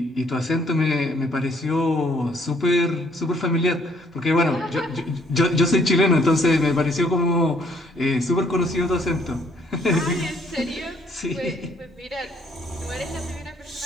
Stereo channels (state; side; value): normal; both; correlation 0.64